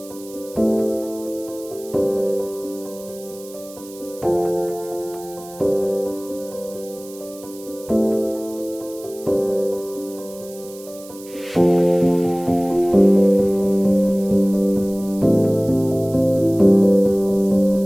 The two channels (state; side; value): noise; right; hiss, 19 dB below the sound